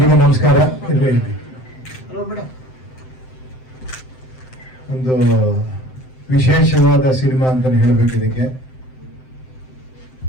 ನಮಸ್ಕಾರ. ಒಂದು ವಿಶೇಷವಾದ ಸಿನಿಮಾ ಅಂತ ಹೇಳಬೇಕು. ಇದಕ್ಕೆ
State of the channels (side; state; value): right; late; 7.8 ms